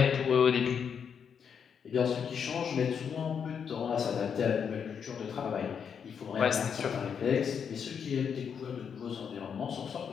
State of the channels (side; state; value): right; quieter; 7.2 dB